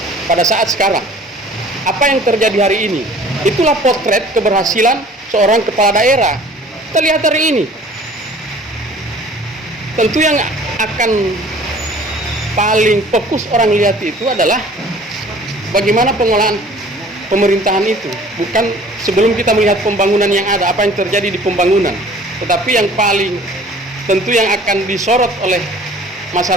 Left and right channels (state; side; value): normal; both; correlation 0.49